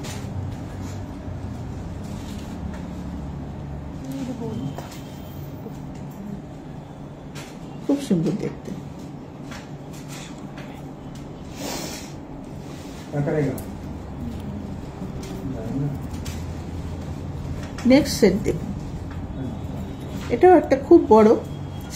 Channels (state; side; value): identical; both; correlation 1.00